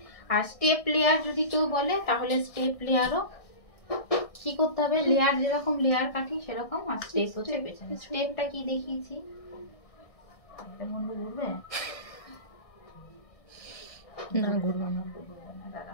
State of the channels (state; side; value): late; right; 1.6 ms